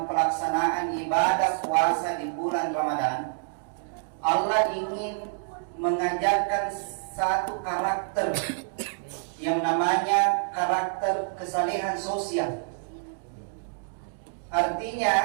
pelaksanaan ibadah puasa di bulan Ramadan, Allah ingin mengajarkan satu karakter yang namanya karakter kesalehan sosial.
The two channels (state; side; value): silent; left; digital silence